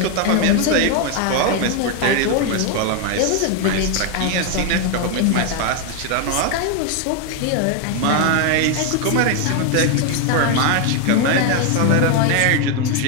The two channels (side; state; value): both; different; correlation 0.01